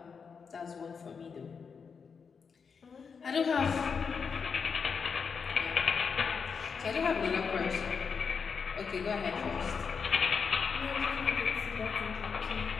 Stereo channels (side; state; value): right; quieter; 5.9 dB